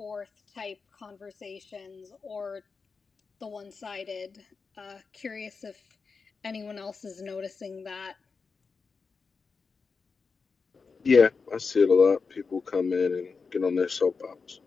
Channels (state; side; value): quieter; right; 4.9 dB